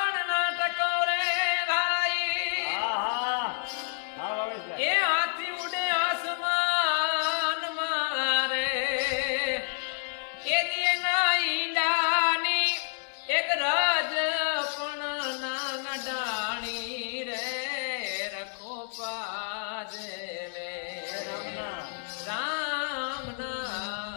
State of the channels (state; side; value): silent; right; digital silence